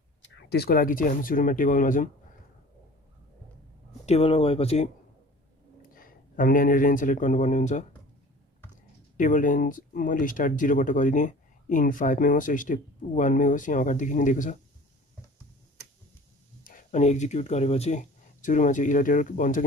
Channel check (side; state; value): both; normal; correlation 0.45